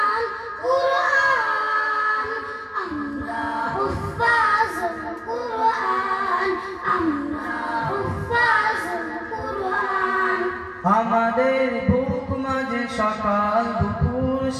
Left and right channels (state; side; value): identical; both; correlation 1.00